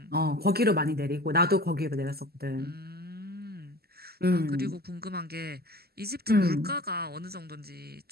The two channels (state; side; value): late; left; 0.46 ms